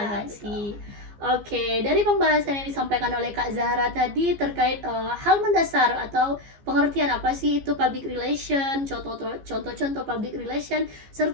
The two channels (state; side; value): late; left; 15 ms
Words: Oke, dari pembahasan yang disampaikan oleh Kak Zahra tadi terkait hal mendasar atau pengertian apa sih itu public relation, contoh-contoh public relation,